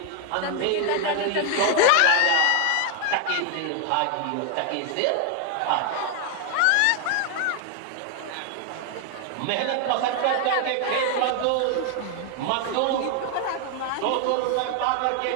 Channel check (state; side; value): different; both; correlation 0.00